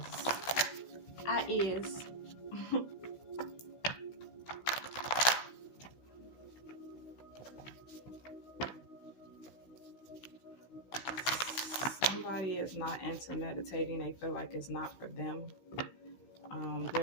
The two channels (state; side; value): late; right; 16 ms